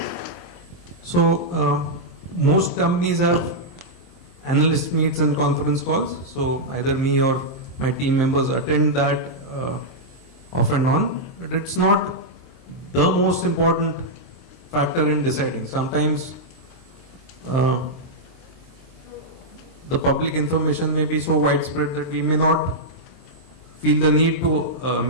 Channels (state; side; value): late; right; 23 ms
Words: So most companies have analyst meets and conference calls. So either me or my team members attend that off and on. But it's not the most important factor in deciding. Sometimes the public information may be so widespread that we may not feel the need to